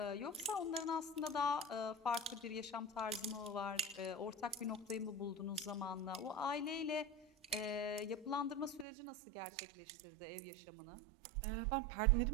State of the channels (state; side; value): drops out; left; at 8.8 s